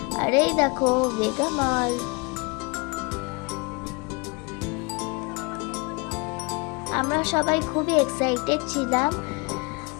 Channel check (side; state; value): right; quieter; 29.4 dB